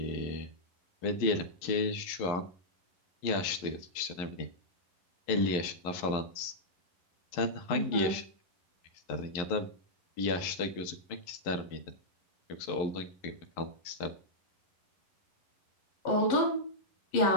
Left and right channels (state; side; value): late; right; 11 ms